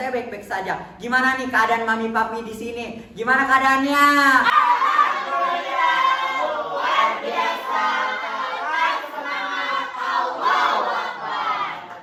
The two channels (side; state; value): both; identical; correlation 1.00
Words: baik-baik saja. Gimana nih keadaan mami papi di sini? Gimana keadaannya?